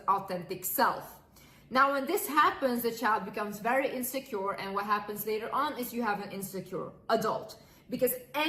self. Now, when this happens, the child becomes very insecure, and what happens later on is you have an insecure adult. Because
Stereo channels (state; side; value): identical; both; correlation 1.00